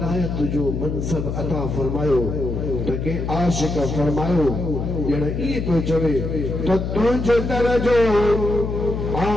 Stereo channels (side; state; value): left; noise; hum, 3 dB below the sound